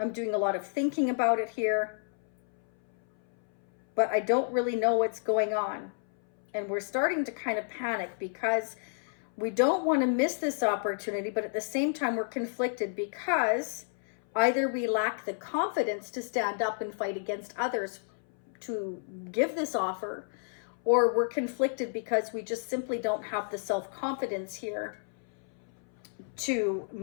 doing a lot of thinking about it here. But I don't really know what's going on. And we're starting to kind of panic because we don't want to miss this opportunity. But at the same time, we're conflicted because either we lack the confidence to stand up and fight against others to give this offer, or we're conflicted because we just simply don't have the self-confidence here to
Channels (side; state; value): right; silent; 57 dB below the other